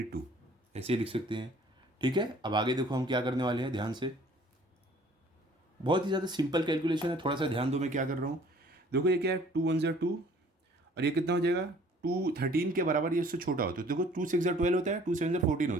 ऐसे लिख सकते हैं। ठीक है, अब आगे देखो हम क्या करने वाले हैं, ध्यान से। बहुत ही ज़्यादा सिंपल कैलकुलेशन है, थोड़ा सा ध्यान दो मैं क्या कर रहा हूँ। देखो ये क्या है, 2 1 2, और ये कितना हो जाएगा 2 13 के बराबर, ये उससे छोटा होता है। तो देखो 2 6 12 होता है, 2 7 14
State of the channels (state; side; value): normal; both; correlation 0.54